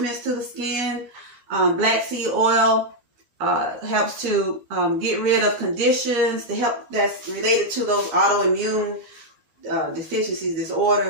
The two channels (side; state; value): left; late; 12 ms